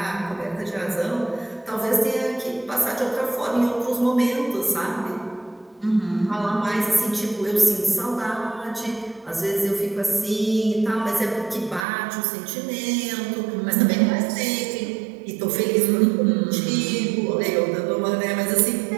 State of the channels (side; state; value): left; drops out; at 11.9 s